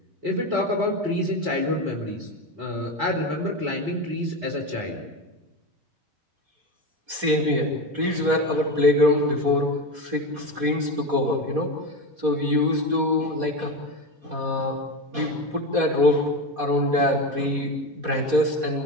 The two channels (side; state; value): left; late; 4.2 ms